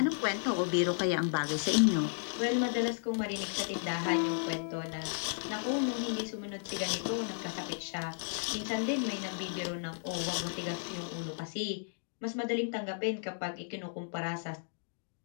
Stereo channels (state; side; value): silent; right; digital silence